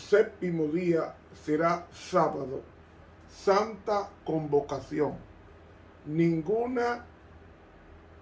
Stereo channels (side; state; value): both; identical; correlation 1.00